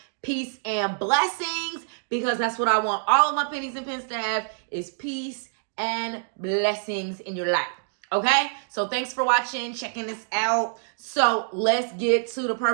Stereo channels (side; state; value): left; silent; digital silence